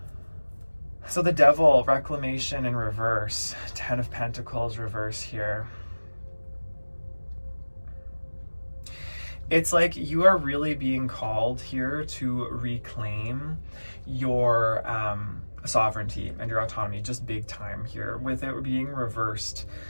So the devil, reclamation in reverse. 10 of Pentacles reverse here. It's like you are really being called here to reclaim your sovereignty and your autonomy, just big time here. With it being reversed,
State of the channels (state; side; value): inverted; both; correlation -1.00